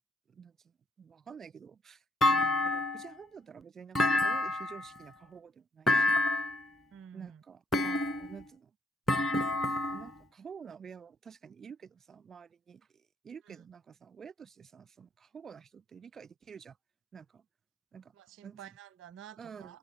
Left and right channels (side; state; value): both; normal; correlation 0.70